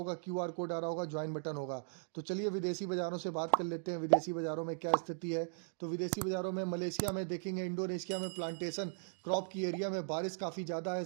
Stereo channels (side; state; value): left; silent; digital silence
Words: क्यूआर कोड आ रहा होगा, ज्वाइन बटन होगा। तो चलिए विदेशी बाजारों से बात कर लेते हैं। विदेशी बाजारों में क्या स्थिति है, तो विदेशी बाजारों में मलेशिया में देखेंगे, इंडोनेशिया में प्लांटेशन क्रॉप की एरिया में बारिश काफ़ी ज़्यादा है,